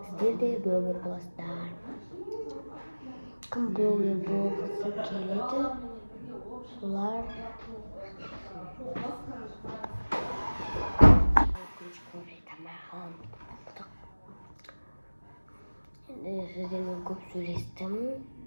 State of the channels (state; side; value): inverted; both; correlation -1.00